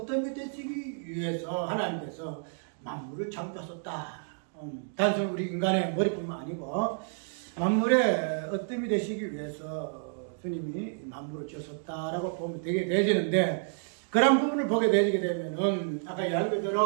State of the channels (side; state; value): left; silent; digital silence